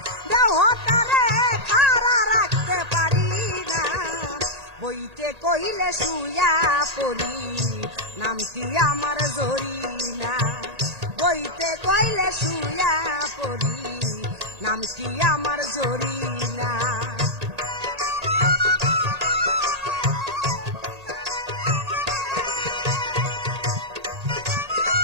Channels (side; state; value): left; late; 1.8 ms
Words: দেহটারে খাড়া রাখতে পারি না বইতে কইলে শুয়া পড়ি নাম কি আমার জরি না বইতে কইলে শুয়া পড়ি নাম কি আমার জরি না